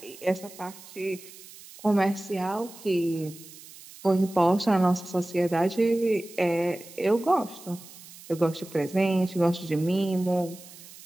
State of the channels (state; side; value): noise; right; hiss, 18 dB below the sound